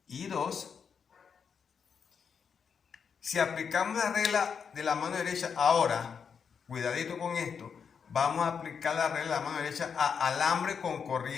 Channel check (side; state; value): right; quieter; 6.5 dB